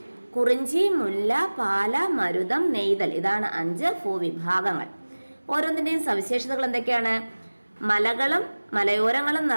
കുറിഞ്ചി, മുല്ല, പാല, മരുതം, നെയ്തൽ ഇതാണ് 5 ഭൂവിഭാഗങ്ങൾ. ഓരോന്നിൻ്റെയും സവിശേഷതകൾ എന്തൊക്കെയാണ്? മലകളും മലയോരങ്ങളും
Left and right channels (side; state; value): both; inverted; correlation -1.00